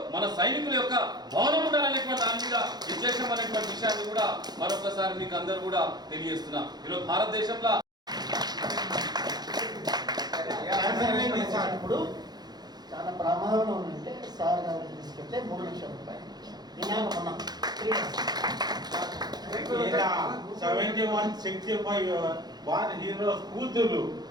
మన సైనికుల యొక్క భవనం ఉండాలనేటువంటి దాని మీద విశేషం అనేటువంటి విషయాన్ని కూడా మరొకసారి మీకు అందరూ కూడా తెలియజేస్తున్నా. ఈరోజు భారతదేశంలో ఇప్పుడు చాలా ప్రమాదంలో ఉందంటే సార్ గారు తీసుకెళ్తే 3 లక్షల రూపాయలు 71-65 వారి హీరోస్ కూతురు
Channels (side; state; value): left; late; 0.20 ms